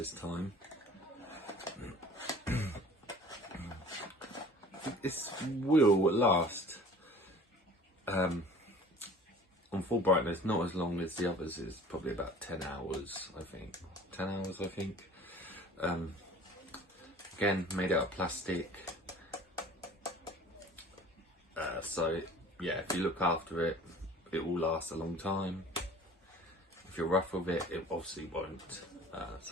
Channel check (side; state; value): both; normal; correlation 0.47